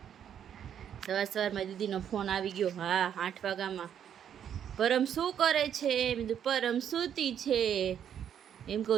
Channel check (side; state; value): left; quieter; 9.1 dB